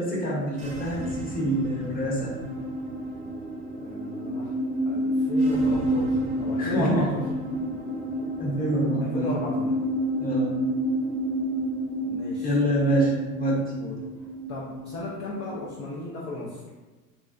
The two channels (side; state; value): both; normal; correlation 0.43